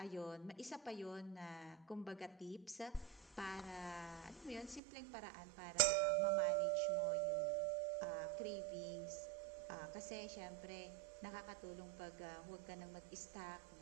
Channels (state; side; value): drops out; left; at 4.8 s